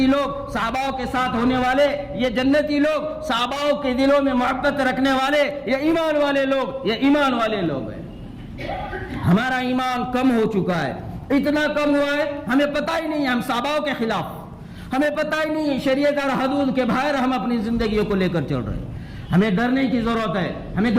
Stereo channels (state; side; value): identical; both; correlation 1.00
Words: لوگ, صحاباؤں کے ساتھ ہونے والے یہ جنتی لوگ, صحاباؤں کے دلوں میں محبت رکھنے والے یہ ایمان والے لوگ, یہ ایمان والے لوگ ہیں. ہمارا ایمان کم ہو چکا ہے, اتنا کم ہوا ہے ہمیں پتہ ہی نہیں, ہم صحاباؤں کے خلاف, ہمیں پتہ ہی نہیں, شریعت اور حدود کے باہر ہم اپنی زندگیوں کو لے کر چل رہے ہیں. ہمیں ڈرنے کی ضرورت ہے, ہمیں